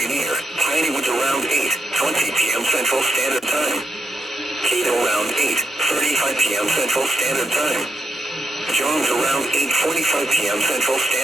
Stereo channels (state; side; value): normal; both; correlation 0.82